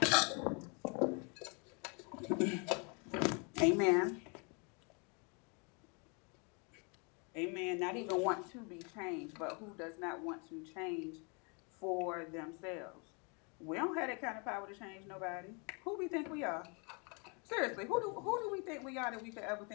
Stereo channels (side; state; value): right; quieter; 34.0 dB